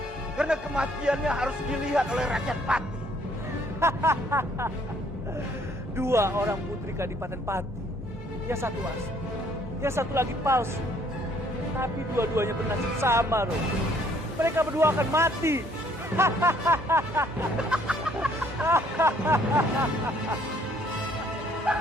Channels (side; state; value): both; normal; correlation 0.63